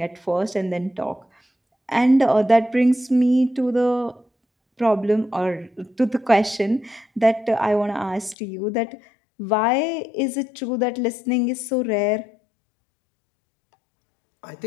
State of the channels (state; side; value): drops out; right; at 8.3 s